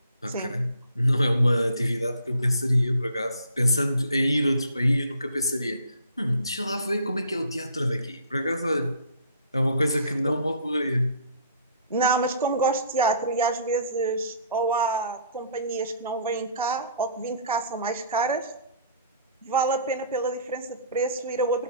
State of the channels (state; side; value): inverted; both; correlation -0.54